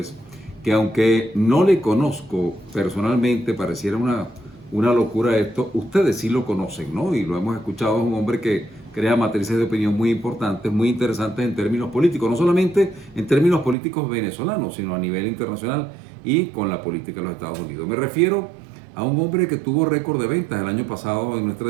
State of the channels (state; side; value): drops out; left; at 13.8 s